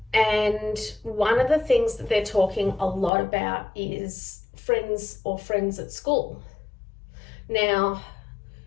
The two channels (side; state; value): right; drops out; at 3.1 s